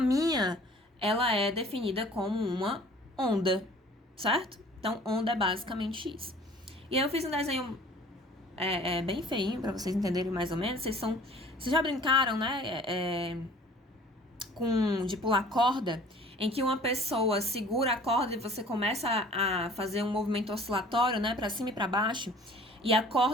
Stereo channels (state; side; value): normal; both; correlation 0.49